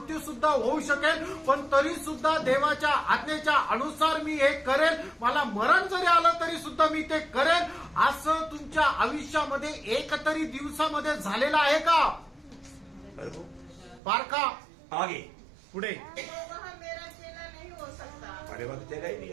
सुद्धा होऊ शकेल, पण तरी सुद्धा देवाच्या आज्ञेच्या अनुसार मी हे करेल. मला मरण जरी आलं तरी सुद्धा मी ते करेल. असं तुमच्या आयुष्यामध्ये एक तरी दिवसामध्ये झालेलं आहे का? बारका आगे तो पुढे. वह मेरा चेला नहीं हो सकता. अरे बात चेला ही नहीं,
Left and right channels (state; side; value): drops out; left; at 14.0 s